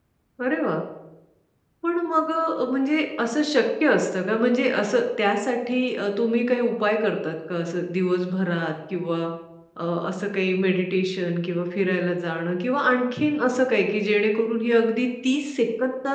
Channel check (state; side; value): identical; both; correlation 1.00